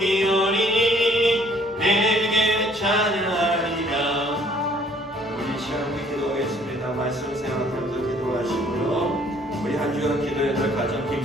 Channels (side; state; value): both; normal; correlation 0.60